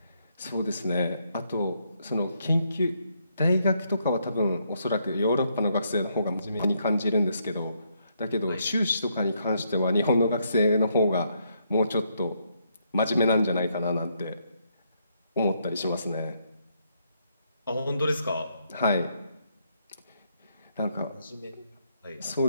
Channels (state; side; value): inverted; both; correlation -0.75